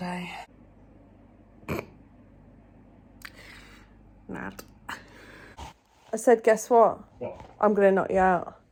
Mad. I said, guess what? What? I'm going to knock you out.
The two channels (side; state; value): both; identical; correlation 1.00